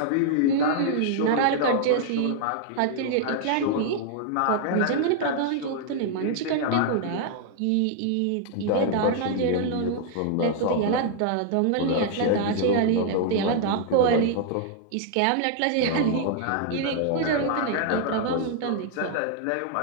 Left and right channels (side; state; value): both; different; correlation -0.01